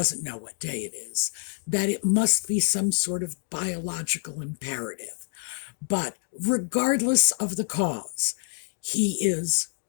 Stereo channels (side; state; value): right; silent; digital silence